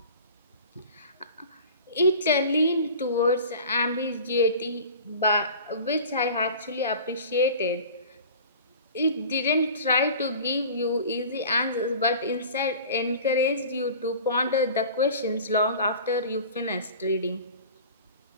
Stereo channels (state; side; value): inverted; both; correlation -0.40